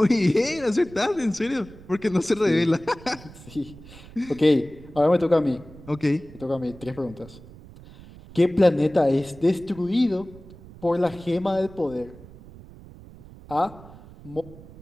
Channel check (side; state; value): right; noise; rumble, 19 dB below the sound